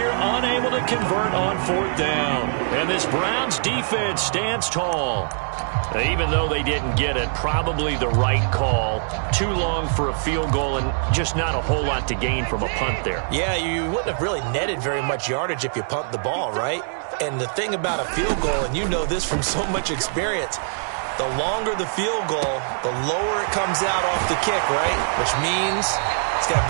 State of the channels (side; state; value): left; silent; digital silence